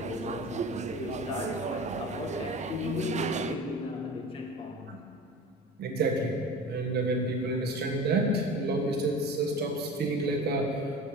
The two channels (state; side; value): normal; both; correlation 0.36